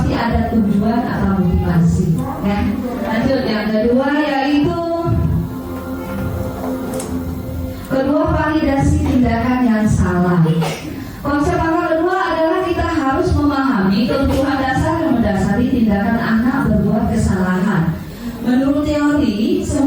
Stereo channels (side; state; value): both; identical; correlation 1.00